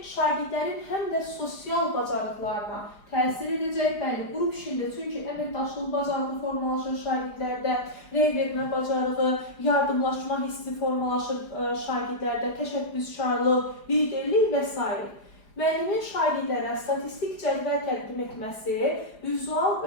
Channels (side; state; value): right; late; 4.9 ms